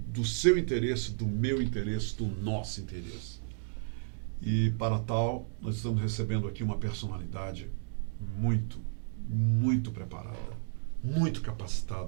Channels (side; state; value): left; silent; digital silence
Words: seu interesse, do meu interesse, do nosso interesse. E para tal, nós estamos recebendo aqui uma personalidade muito preparada, muito